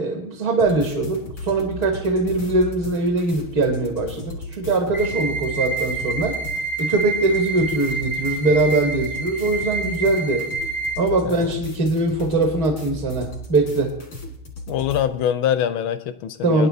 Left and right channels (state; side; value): late; right; 6.3 ms